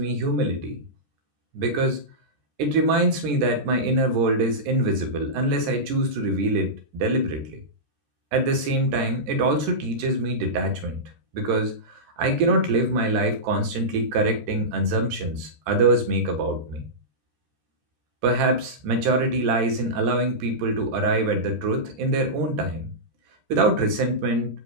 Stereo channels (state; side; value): late; left; 14 ms